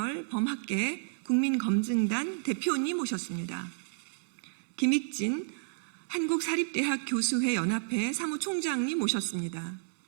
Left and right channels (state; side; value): silent; left; digital silence